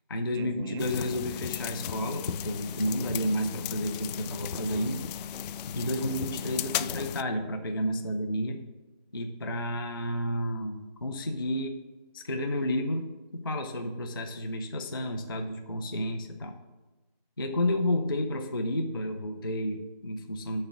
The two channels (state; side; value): inverted; both; correlation -0.69